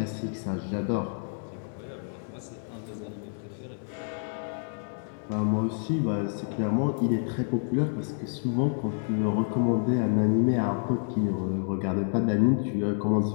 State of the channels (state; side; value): silent; right; digital silence